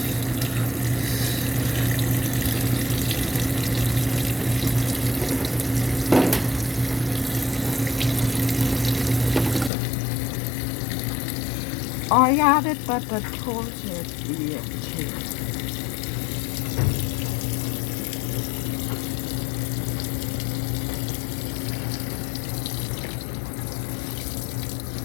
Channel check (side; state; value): right; drops out; at 9.7 s